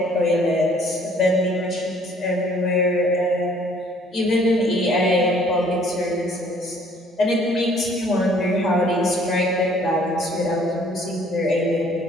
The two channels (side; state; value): both; normal; correlation 0.59